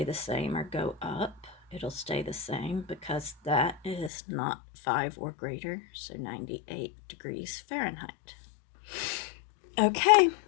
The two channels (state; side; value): drops out; right; at 4.1 s